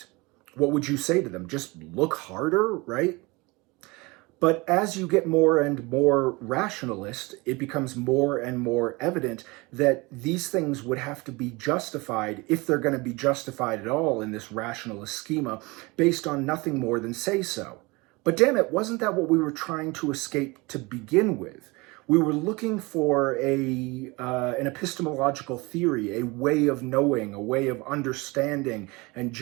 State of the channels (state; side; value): quieter; left; 24.7 dB